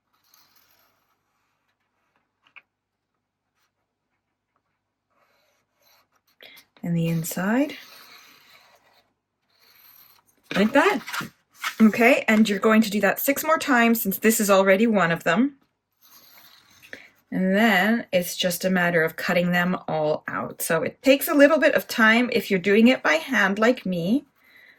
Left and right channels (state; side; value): identical; both; correlation 1.00